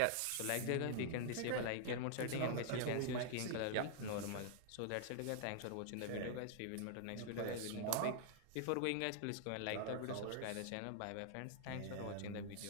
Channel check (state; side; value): different; both; correlation -0.01